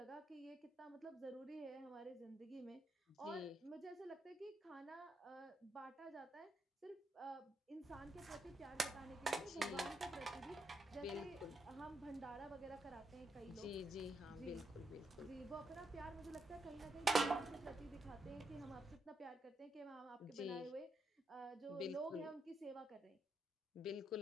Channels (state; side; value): normal; both; correlation 0.80